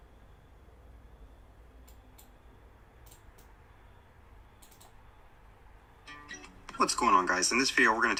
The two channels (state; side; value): identical; both; correlation 1.00